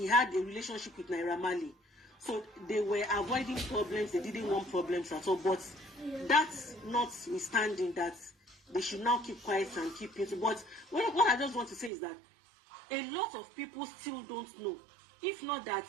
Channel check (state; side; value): drops out; left; at 11.9 s